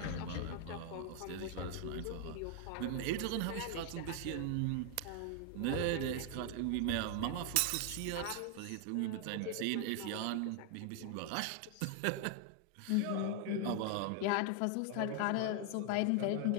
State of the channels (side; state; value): both; different; correlation 0.00